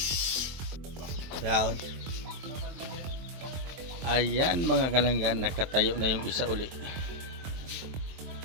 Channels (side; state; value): left; late; 23 ms